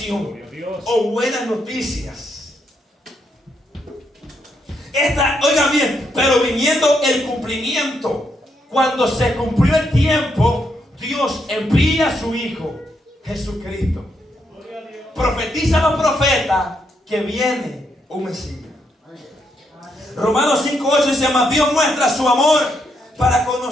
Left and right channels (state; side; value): normal; both; correlation 0.78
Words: o buenas noticias. Oigan bien, pero viniendo el cumplimiento, cuando se cumplió el tiempo, Dios envía a su Hijo Jesucristo. Profetiza los profetas que viene un Mesías. Romanos 5:8 dice: mas Dios muestra su amor para con